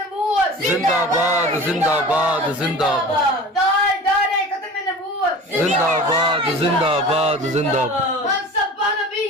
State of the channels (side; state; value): both; normal; correlation 0.38